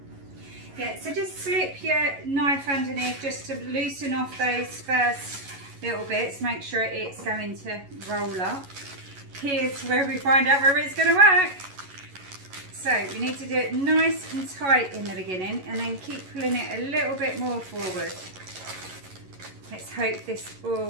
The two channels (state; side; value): late; left; 11 ms